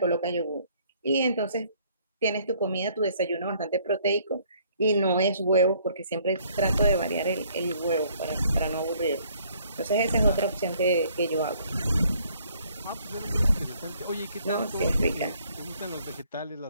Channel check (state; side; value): inverted; both; correlation -0.63